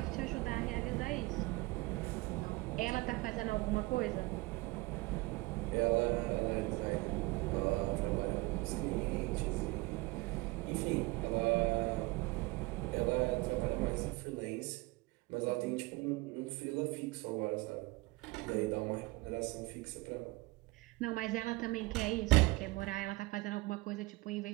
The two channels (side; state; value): left; quieter; 22.8 dB